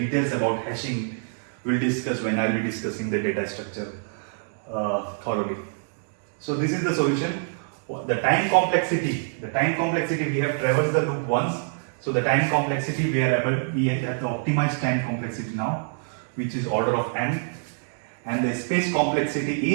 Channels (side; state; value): left; silent; digital silence